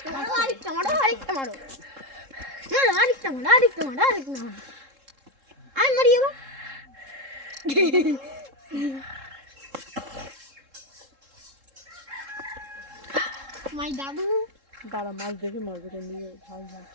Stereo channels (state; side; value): late; left; 3.7 ms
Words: মারো, আরেকটা মারো, আরেকটা মারো, মারো, আরেকটা মারো, আরেকটা মারো, আরেকটা মারো। আমি মারি এবার। মাই দাদু দাঁড়া, মাছ দেখে মারবে, কোন দিকে ভাই